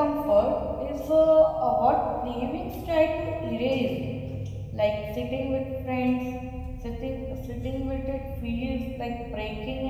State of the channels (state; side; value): identical; both; correlation 1.00